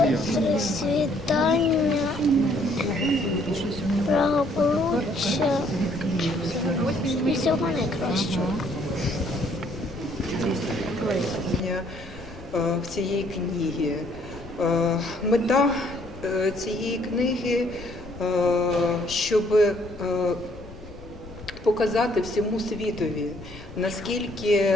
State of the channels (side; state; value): left; noise; rumble, 16 dB below the sound